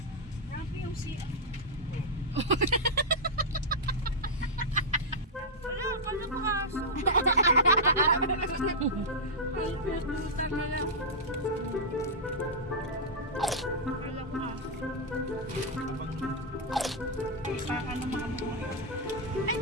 Grabe yung siya. Wala, pala ko aso. Ang puta na lang. Wala ko aso. Baka na makamuha. Ay,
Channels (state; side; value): normal; both; correlation -0.08